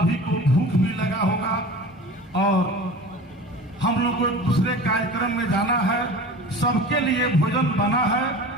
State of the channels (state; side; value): normal; both; correlation 0.37